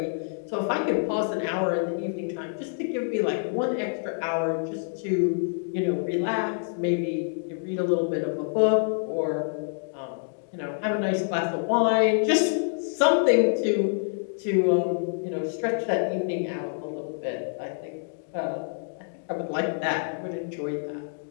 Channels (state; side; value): silent; right; digital silence